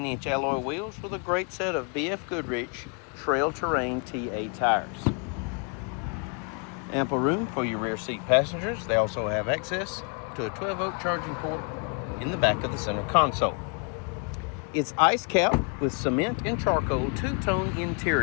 alloy wheels with a great set of BF Goodrich Trail Terrain TA tires. Ample room for your rear seat passengers. They also have access to a 12-volt charging port in the back of the center console. It's ice capped with cement and charcoal two-tone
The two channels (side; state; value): right; quieter; 36.5 dB